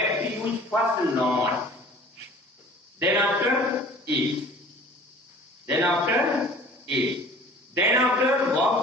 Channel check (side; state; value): both; normal; correlation 0.47